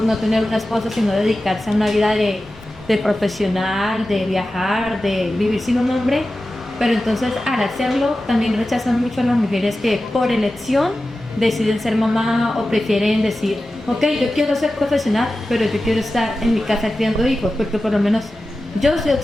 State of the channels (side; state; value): both; normal; correlation 0.94